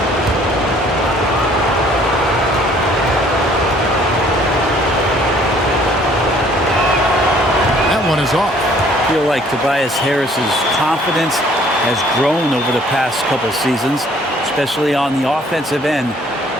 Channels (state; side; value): normal; both; correlation 0.58